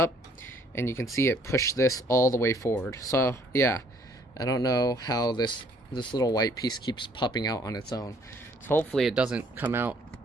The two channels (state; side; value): normal; both; correlation 0.62